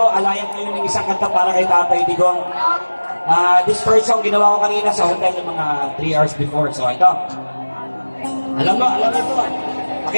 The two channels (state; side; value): inverted; both; correlation -1.00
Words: alayan kayo ng isang kanta para kay Tatay Digong. This first song ginawa ko kanina sa hotel yung mga 3 hours before. So ito, alam mo ito.